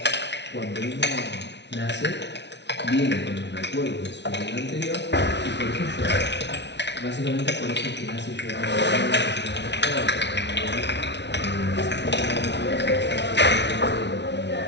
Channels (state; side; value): late; right; 0.50 ms